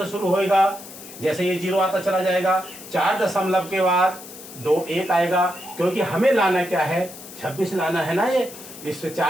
शुरू होएगा, जैसे ये 0 आता चला जाएगा, 4 के बाद 2 1 आएगा, क्योंकि हमें लाना क्या है, 26 लाना है ना, ये इससे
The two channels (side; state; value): left; noise; hiss, 15 dB below the sound